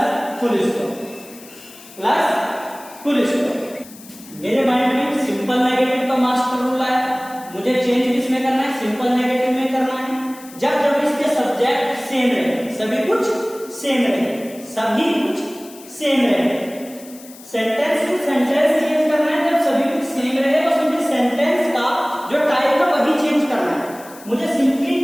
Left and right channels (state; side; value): noise; left; hiss, 20 dB below the sound